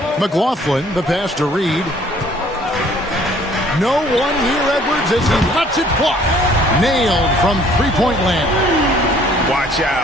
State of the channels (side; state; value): both; normal; correlation 0.58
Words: McLaughlin, the pass to Reed. No one near Edwards as he lets it fly. Nailed from three-point land. Watch